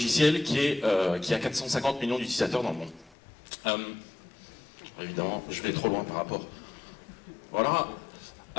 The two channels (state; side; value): drops out; right; at 3.2 s